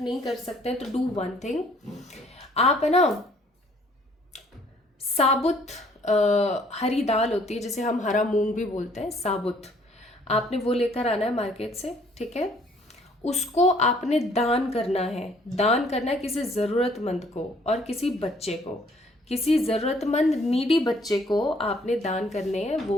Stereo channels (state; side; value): normal; both; correlation 0.61